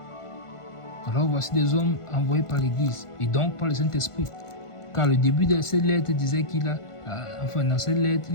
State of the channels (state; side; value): late; right; 1.4 ms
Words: Alors voici des hommes envoyés par l'Église et donc par le Saint-Esprit. Car le début de cette lettre disait dans cette lettre,